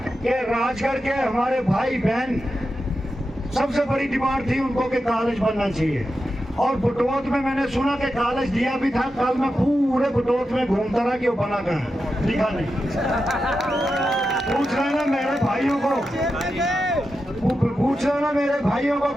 कि राजगढ़ के हमारे भाई बहन सबसे बड़ी डिमांड थी उनको कि कॉलेज बनना चाहिए। और बुटोत में मैंने सुना कि कॉलेज दिया भी था। कल मैं पूरे बुटोत में घूमता रहा कि वो बना कहाँ, दिखा नहीं। पूछ लेना मेरे भाइयों को, पूछ लेना मेरे भाइयों को,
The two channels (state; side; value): normal; both; correlation 0.89